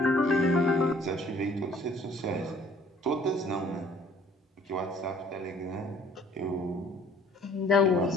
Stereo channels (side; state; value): both; normal; correlation 0.56